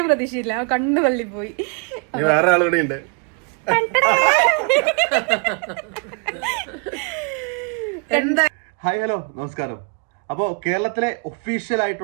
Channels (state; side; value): quieter; left; 38.1 dB